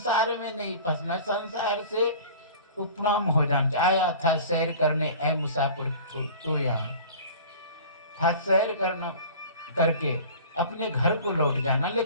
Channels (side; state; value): both; inverted; correlation -0.42